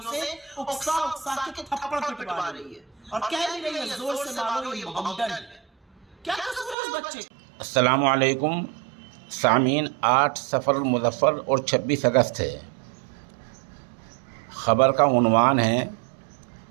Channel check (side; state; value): left; drops out; at 6.8 s